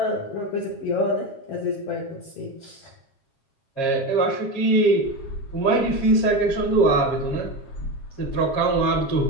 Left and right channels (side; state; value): right; late; 7.4 ms